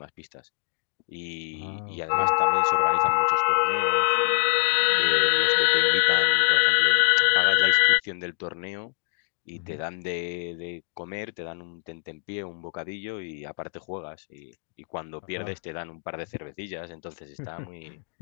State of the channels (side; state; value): right; silent; digital silence